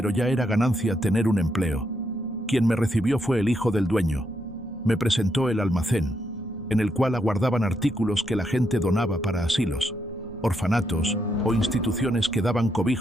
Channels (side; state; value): both; normal; correlation 0.79